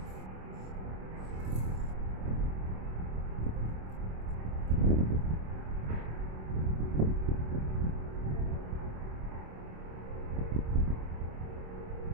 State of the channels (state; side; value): late; left; 26 ms